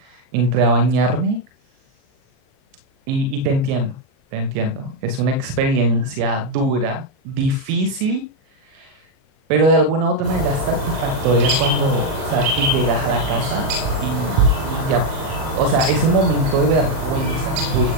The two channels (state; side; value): late; left; 38 ms